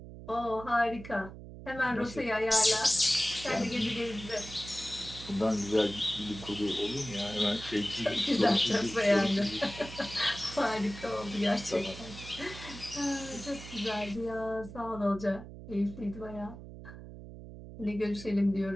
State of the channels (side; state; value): right; noise; hum, 14 dB below the sound